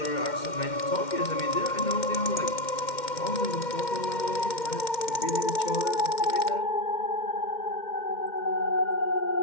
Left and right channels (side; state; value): right; late; 2.1 ms